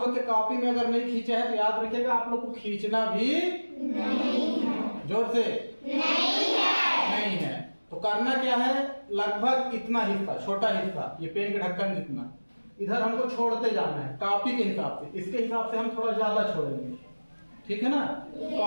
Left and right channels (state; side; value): inverted; both; correlation -1.00